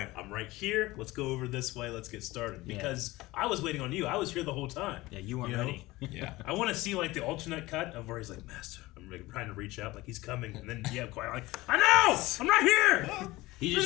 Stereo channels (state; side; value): quieter; right; 19.6 dB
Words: I'm right here. Let's go over this way. Let's get started. Because I was waiting on you. I was here the whole time. Yeah, you weren't ready. Yeah. I want to see like the alternate cut of where he's like, Master, I'm like, trying to reach out like he's coming. And then Qui-Gon like, I know! I'm right here! Look